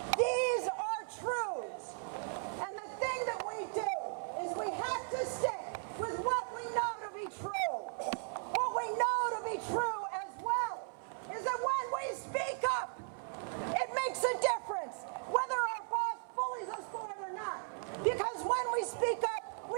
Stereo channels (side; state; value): left; silent; 53 dB below the other